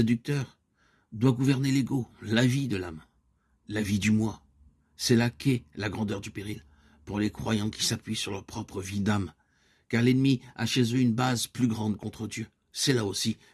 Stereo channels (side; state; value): both; identical; correlation 1.00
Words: doit gouverner l'ego, la vie de l'âme, la vie du moi. C'est là qu'est la grandeur du péril pour les croyants qui s'appuient sur leur propre vie d'âme, car l'ennemi a chez eux une base plus grande contre Dieu. C'est là aussi